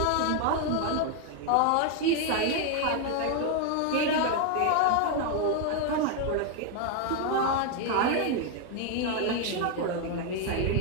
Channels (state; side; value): different; both; correlation 0.00